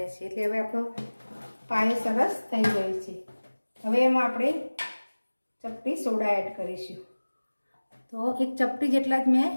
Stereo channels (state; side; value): inverted; both; correlation -1.00